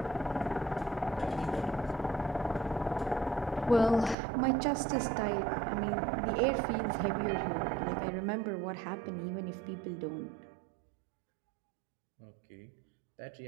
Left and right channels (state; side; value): drops out; left; at 4.2 s